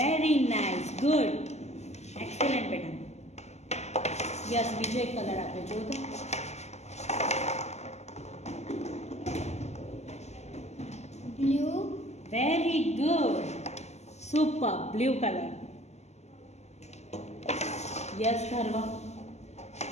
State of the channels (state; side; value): late; right; 0.33 ms